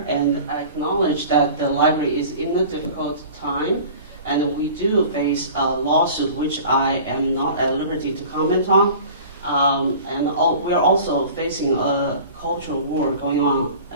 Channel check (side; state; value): both; inverted; correlation -0.42